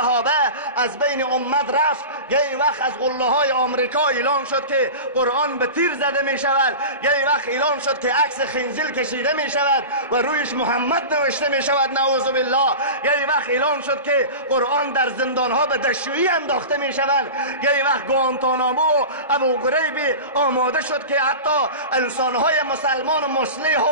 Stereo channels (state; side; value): inverted; both; correlation -0.31